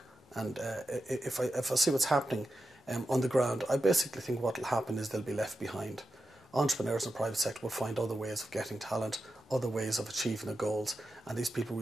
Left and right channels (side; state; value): both; normal; correlation 0.90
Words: and if I see what's happening on the ground, I basically think what will happen is they'll be left behind. Entrepreneurs in the private sector will find other ways of getting talent, other ways of achieving their goals, and these people will